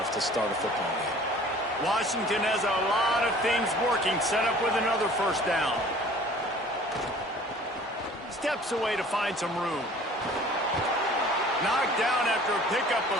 to start a football game. Washington has a lot of things working, set up with another first down. Steps away to find some room. Knocked down after a pickup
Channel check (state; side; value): normal; both; correlation 0.49